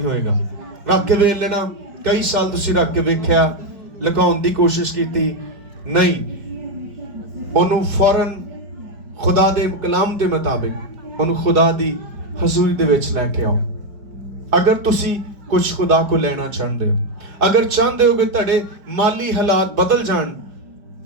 ਹੋਏਗਾ। ਰੱਖ ਕੇ ਵੇਖ ਲੈਣਾ, ਕਈ ਸਾਲ ਤੁਸੀਂ ਰੱਖ ਕੇ ਵੇਖਿਆ, ਲੁਕਾਉਣ ਦੀ ਕੋਸ਼ਿਸ਼ ਕੀਤੀ, ਨਹੀਂ, ਉਹਨੂੰ ਫੌਰਨ ਖੁਦਾ ਦੇ ਕਲਾਮ ਦੇ ਮੁਤਾਬਿਕ ਉਹਨੂੰ ਖੁਦਾ ਦੀ ਹਜ਼ੂਰੀ ਦੇ ਵਿੱਚ ਲੈ ਕੇ ਆਓ। ਅਗਰ ਤੁਸੀਂ ਕੁਝ ਖੁਦਾ ਕੋ ਲੈਣਾ ਚਾਹੁੰਦੇ ਹੋ, ਅਗਰ ਚਾਹੁੰਦੇ ਹੋ ਕਿ ਤੁਹਾਡੇ ਮਾਲੀ ਹਾਲਾਤ ਬਦਲ ਜਾਣ,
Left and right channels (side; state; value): left; late; 5.0 ms